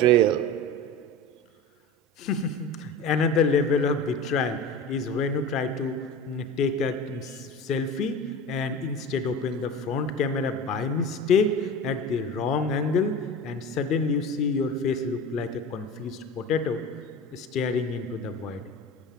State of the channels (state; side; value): normal; both; correlation 0.31